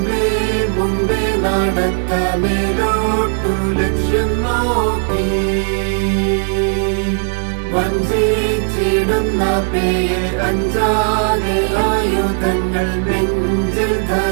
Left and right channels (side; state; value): left; silent; 61 dB below the other